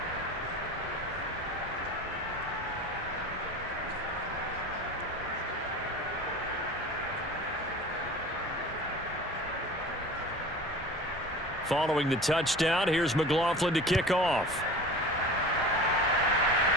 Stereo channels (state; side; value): normal; both; correlation 0.37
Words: Following the touchdown, here's McLaughlin to kick off.